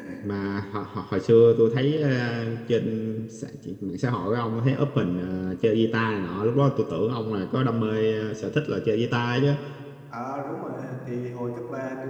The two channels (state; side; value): identical; both; correlation 1.00